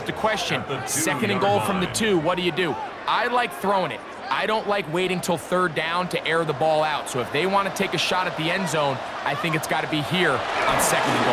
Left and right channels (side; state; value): both; identical; correlation 1.00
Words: the question. 2nd and goal from the 2, what do? I like throwing it. I don't like waiting till third down to air the ball out. So if they want to take a shot at the end zone, I think it's got to be here on 2nd and